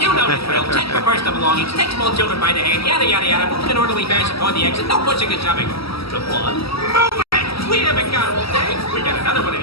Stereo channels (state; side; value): late; right; 0.76 ms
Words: know the drill. Check for personal belongings, take small children by the hand, yada yada yada, move in an orderly fashion toward the exit, no pushing and shoving. Come on, move it! We haven't got all day. We got another one of